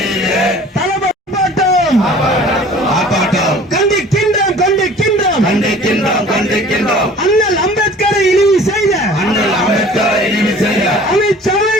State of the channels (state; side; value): normal; both; correlation 0.47